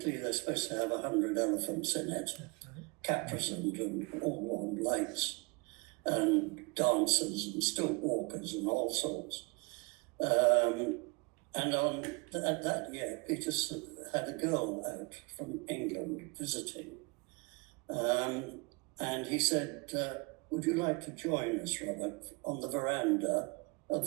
they're supposed to have 100 elephants in it, caparisoned and all on lights, and dancers and stilt walkers and all sorts. And on that year, Peter had a girl out from England visiting. And he said, "Would you like to join us, Robert, on the veranda of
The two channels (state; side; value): quieter; left; 29.1 dB